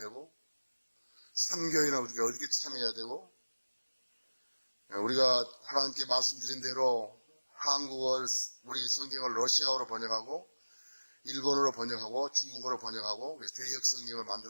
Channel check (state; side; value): inverted; both; correlation -1.00